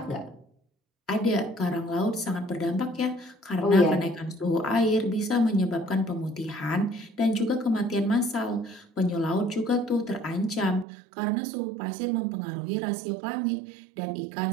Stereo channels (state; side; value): drops out; left; at 10.9 s